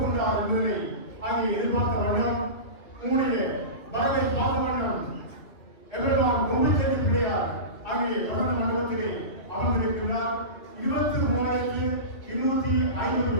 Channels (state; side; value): late; right; 2.9 ms